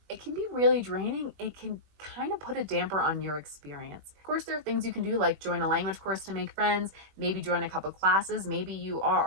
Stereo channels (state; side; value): late; left; 20 ms